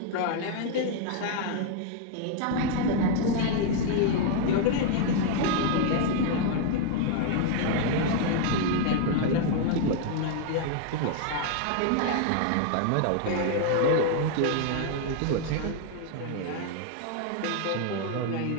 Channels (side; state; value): both; different; correlation 0.00